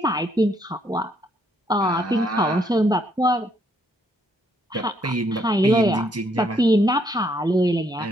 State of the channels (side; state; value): both; normal; correlation 0.71